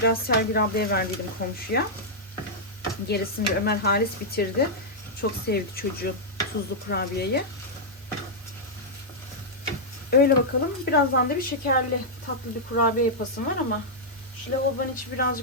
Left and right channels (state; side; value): normal; both; correlation -0.07